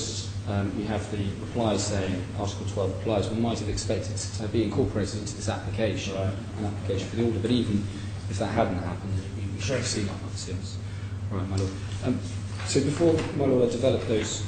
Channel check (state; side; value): identical; both; correlation 1.00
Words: we have the reply saying Article 12 applies. One might have expected to be incorporated into this application, an application for the order, but even if that hadn't happened, we should have seen that. Yes. Right, my lord. So before, my lord, I develop those